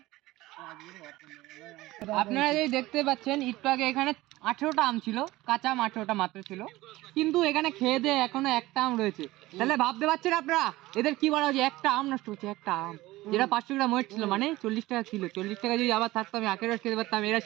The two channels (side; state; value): left; quieter; 18.3 dB